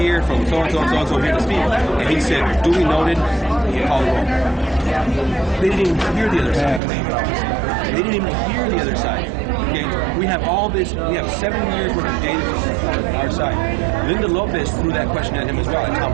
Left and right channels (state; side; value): drops out; left; at 6.8 s